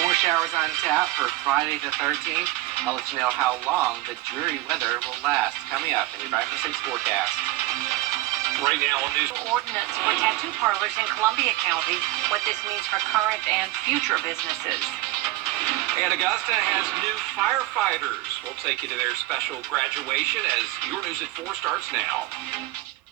More showers on tap for Friday the 13th. I'll let you know how long the dreary weather will last. Coming up in your 5-for-6 forecast. Right now on news. Ordinance for tattoo parlors in Columbia County. What this means for current and future businesses. And Augusta has new firefighters. We'll take you to their special graduation as Your News at 4 starts now.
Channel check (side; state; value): left; quieter; 17.9 dB